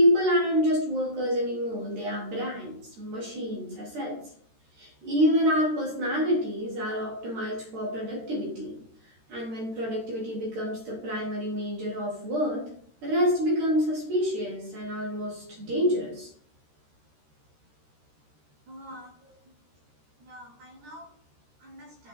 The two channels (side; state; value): left; late; 13 ms